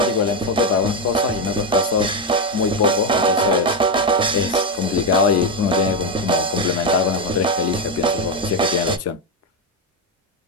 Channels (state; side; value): normal; both; correlation 0.08